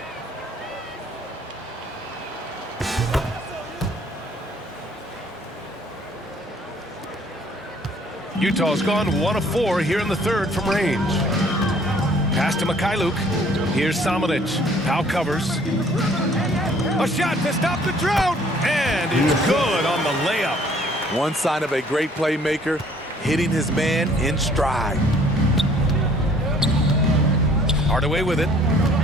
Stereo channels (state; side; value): normal; both; correlation 0.58